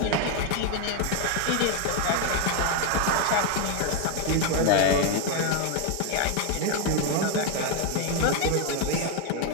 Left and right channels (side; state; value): both; different; correlation 0.01